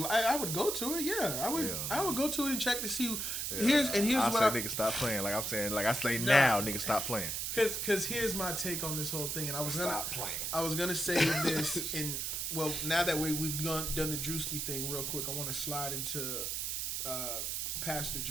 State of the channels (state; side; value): noise; right; hiss, 2 dB below the sound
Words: would go to it, yeah. I would go to it and check to see. Here's what nigga stop playing. Like I'm saying, like I say now, nigga stop playing. Because here's my take on this whole thing, and I was gonna say this in. Well, now that we've done the Druski thing real quick, I want to slide into Pastor